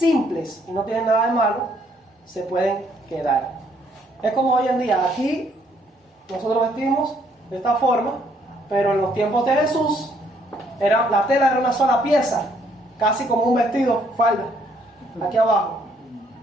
y no tienen nada de malo, se pueden quedar. Es como hoy en día, aquí nosotros vestimos de esta forma, pero en los tiempos de Jesús la tela era una sola pieza, casi como un vestido, falda, aquí abajo.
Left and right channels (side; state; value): both; normal; correlation 0.67